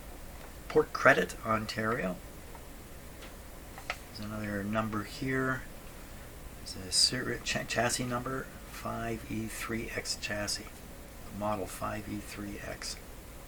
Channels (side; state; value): both; identical; correlation 1.00